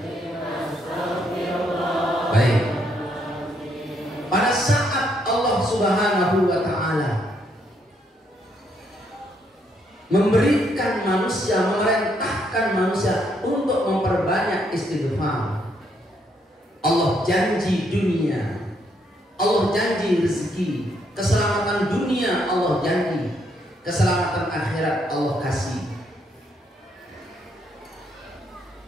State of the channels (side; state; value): both; normal; correlation 0.73